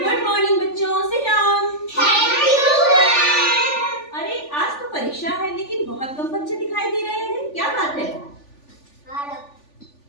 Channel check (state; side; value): late; right; 3.4 ms